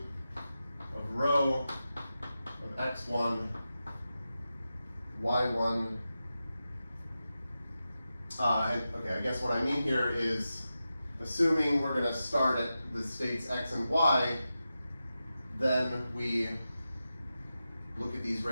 of rho of x1, y1. And okay, I guess what I mean here is assuming we're going to start at the states x and y, then we look at these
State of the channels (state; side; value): inverted; both; correlation -0.91